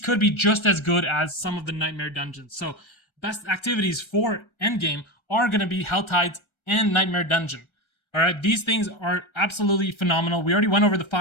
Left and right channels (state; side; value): late; right; 1.3 ms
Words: be just as good as some of the Nightmare Dungeons. So, best activities for endgame are going to be Hell Tides and Nightmare Dungeon. All right, these things are absolutely phenomenal. We already went over the